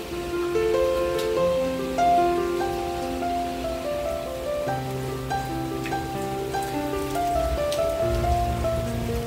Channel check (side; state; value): both; identical; correlation 1.00